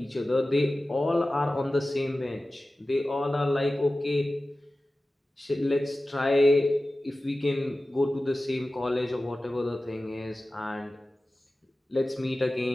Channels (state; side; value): normal; both; correlation 0.96